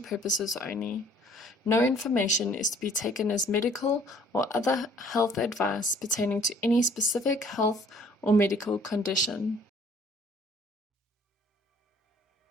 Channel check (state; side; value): normal; both; correlation 0.57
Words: purposes only. No information is to be taken as medical or other health advice pertaining to any specific health or medical condition.